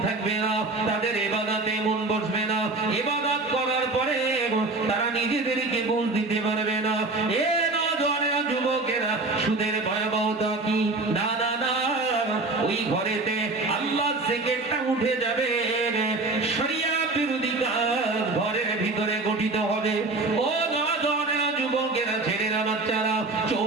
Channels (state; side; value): quieter; left; 3.2 dB